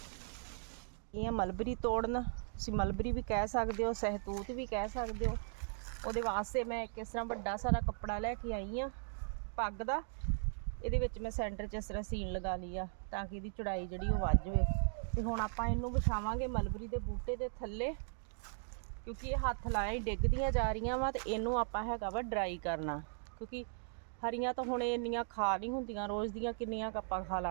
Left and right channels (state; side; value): silent; left; digital silence